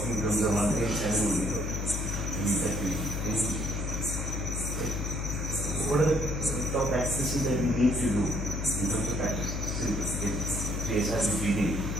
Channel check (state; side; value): noise; left; hum, 2 dB below the sound